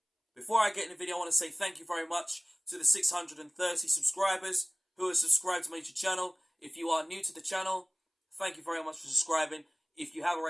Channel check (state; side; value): identical; both; correlation 1.00